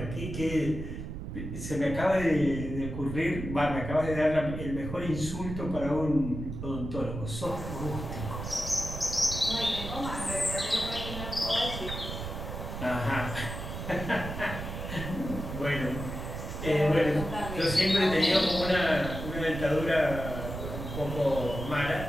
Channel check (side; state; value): right; noise; rumble, 7 dB below the sound